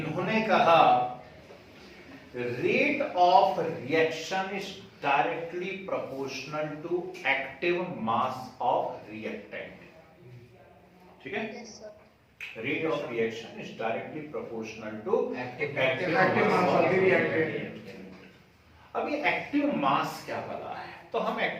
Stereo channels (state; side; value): identical; both; correlation 1.00